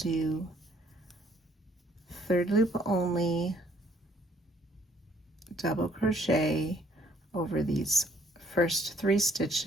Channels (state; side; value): normal; both; correlation 0.63